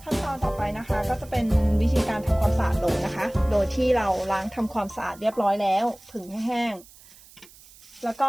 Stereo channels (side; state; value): right; noise; hiss, 23 dB below the sound